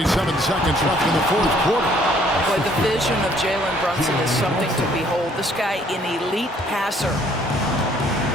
seconds left in the 4th quarter. Boy, the vision of Jalen Brunson is something to behold. This guy, an elite passer.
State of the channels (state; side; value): normal; both; correlation 0.62